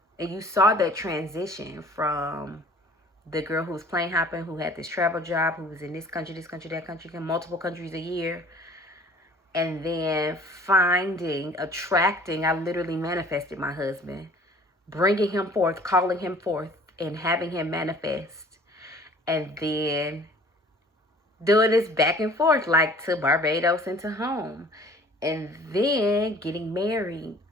you saw that transition from the girl who was plane hopping, who had this travel job, who was in this country, that country, multiple countries a year, and then attracting, I literally manifested my husband, bringing him forth, calling him forth, and having him manifest. And then doing this back and forth, like to Barbados and to home. And then getting married.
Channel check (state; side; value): normal; both; correlation 0.51